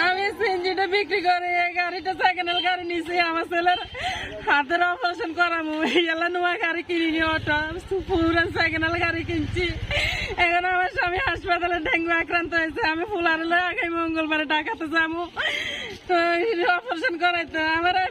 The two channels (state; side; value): identical; both; correlation 1.00